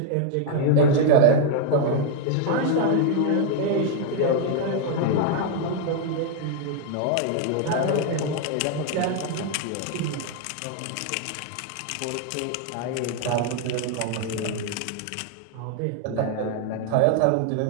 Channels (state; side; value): different; both; correlation 0.00